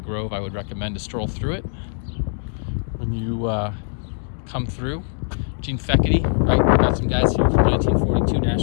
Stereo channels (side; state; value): right; silent; digital silence